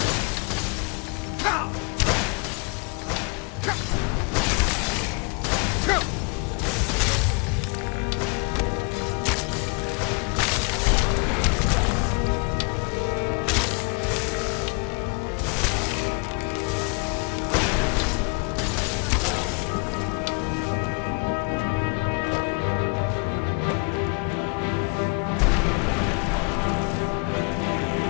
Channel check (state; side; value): quieter; right; 33.0 dB